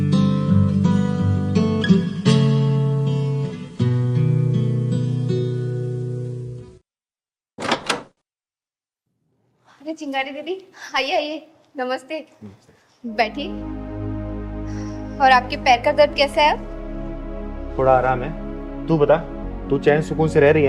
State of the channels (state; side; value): identical; both; correlation 1.00